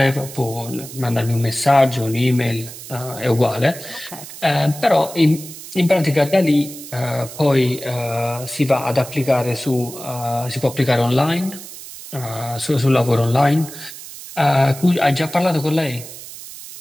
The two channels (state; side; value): noise; right; hiss, 14 dB below the sound